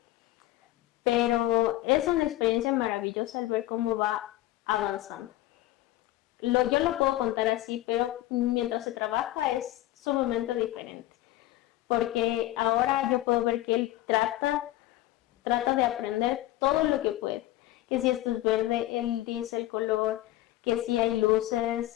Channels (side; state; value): right; quieter; 15.9 dB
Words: pero es una experiencia maravillosa el ver cómo va avanzando. Yo lo puedo contar así, pero mientras se trabaja es sumamente diferente, porque ahora yo puedo ver que él trata de aprender todo lo que puede, que si esto es verde, él dice el color, que si hay